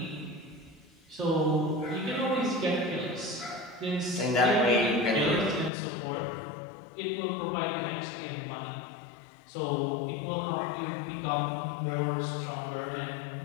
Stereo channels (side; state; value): right; drops out; at 5.7 s